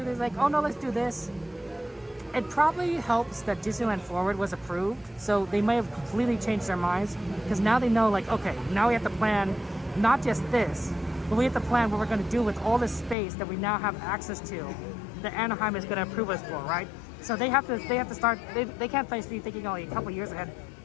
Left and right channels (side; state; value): right; drops out; at 13.2 s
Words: they're like, oh no, let's do this. It probably helps that Disneyland Forward was approved. So they may have completely changed their minds. Because now they know like, okay, now we have to plan not just this, but we have to plan what we're going to do with all this space that we now have access to that Anaheim is going to approve us for, right? So they have to start, they can't be thinking only a couple years ahead.